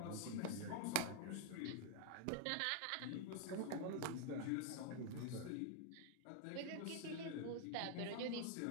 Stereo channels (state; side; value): different; both; correlation 0.00